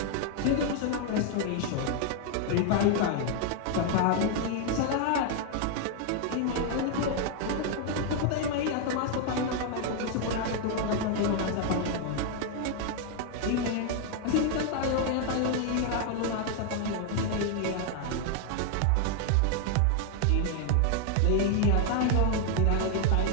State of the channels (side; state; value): both; different; correlation 0.00